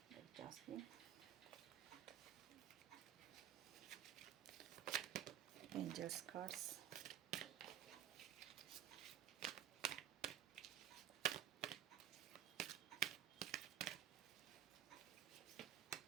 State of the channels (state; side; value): quieter; left; 11.1 dB